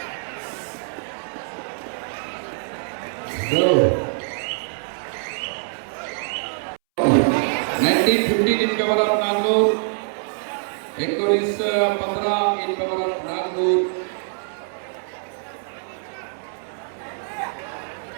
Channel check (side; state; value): left; silent; 63 dB below the other